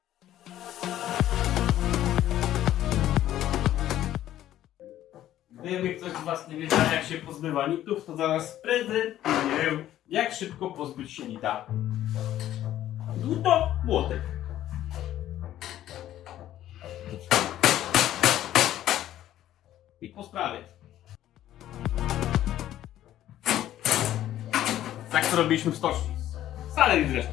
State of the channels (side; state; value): right; quieter; 12.7 dB